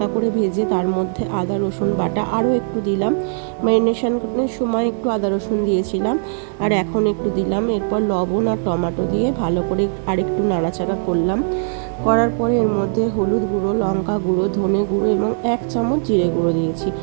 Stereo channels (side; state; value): left; silent; 66 dB below the other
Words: করে ভেজে তার মধ্যে আদা রসুন বাটা আরও একটু দিলাম। ম্যারিনেশনের সময় একটু আদা রসুন দিয়েছিলাম, আর এখন একটু দিলাম। এরপর লবণ আর টমেটো দিয়ে ভালো করে আরেকটু নাড়াচাড়া করলাম। করার পরে এর মধ্যে হলুদ গুঁড়ো, লঙ্কা গুঁড়ো, ধনে গুঁড়ো এবং 1 চামচ জিরে গুঁড়ো দিয়েছি।